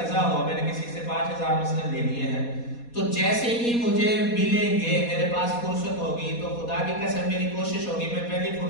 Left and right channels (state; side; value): late; right; 4.2 ms